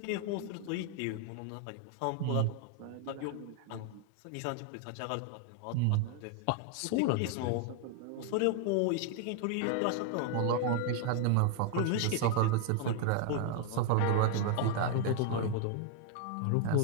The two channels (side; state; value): both; different; correlation 0.00